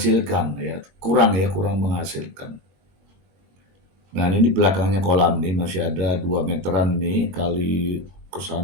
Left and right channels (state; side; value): late; left; 21 ms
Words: kurang menghasilkan. Nah ini belakangnya kolam nih masih ada 2 meteran nih kali ke